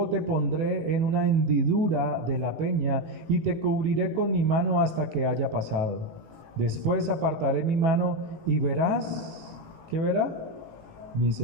te pondré en una hendidura de la peña y te cubriré con mi mano hasta que haya pasado. Después apartaré mi mano y verás, ¿qué verá? Mis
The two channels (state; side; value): late; left; 18 ms